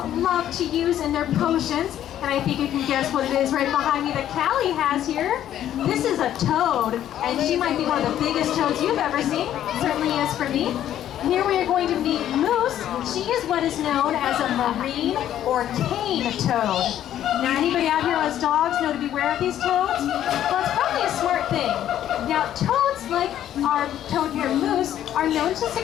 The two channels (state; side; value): quieter; right; 11.4 dB